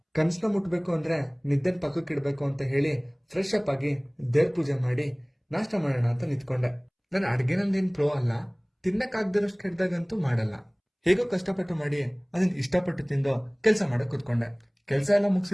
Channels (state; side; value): identical; both; correlation 1.00